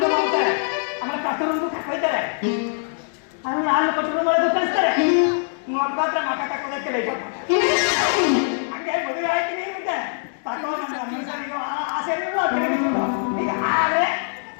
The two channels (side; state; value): right; silent; digital silence